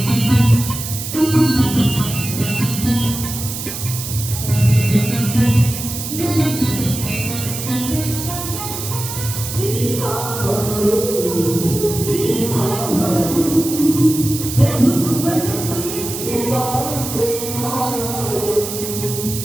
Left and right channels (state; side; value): noise; right; hiss, 7 dB below the sound